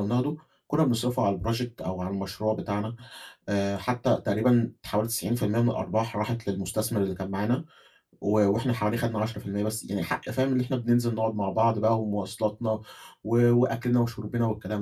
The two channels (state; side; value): identical; both; correlation 1.00